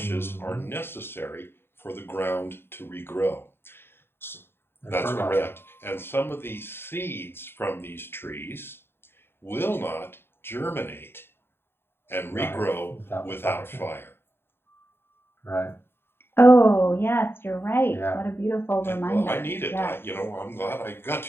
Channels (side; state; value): right; late; 0.11 ms